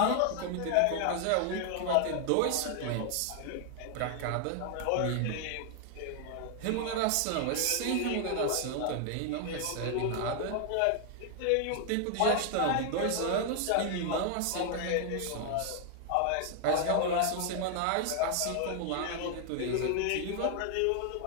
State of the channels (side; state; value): both; different; correlation 0.00